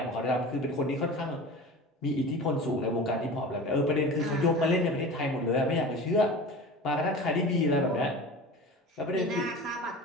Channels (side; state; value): both; normal; correlation 0.35